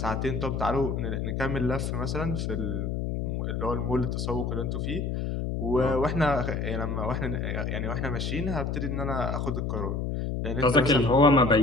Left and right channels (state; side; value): noise; left; hum, 1 dB below the sound